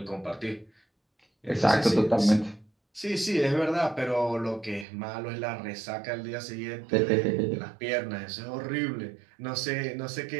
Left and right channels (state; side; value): drops out; left; at 4.9 s